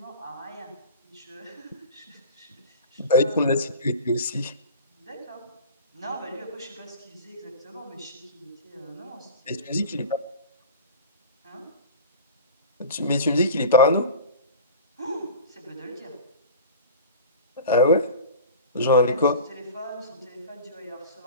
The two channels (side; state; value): both; inverted; correlation -0.37